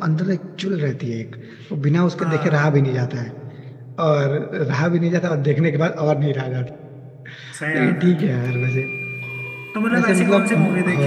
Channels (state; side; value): identical; both; correlation 1.00